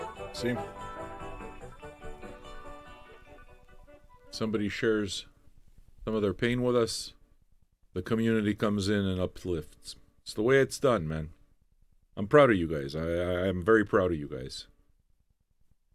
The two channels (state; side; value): identical; both; correlation 1.00